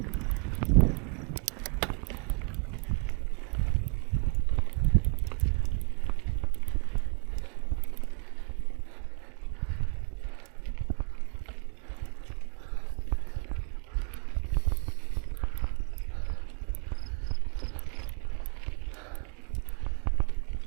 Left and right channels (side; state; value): left; quieter; 37.7 dB